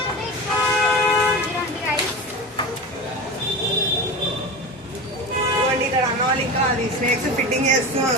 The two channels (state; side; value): normal; both; correlation 0.28